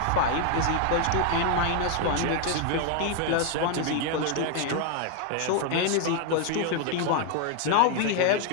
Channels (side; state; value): both; different; correlation 0.00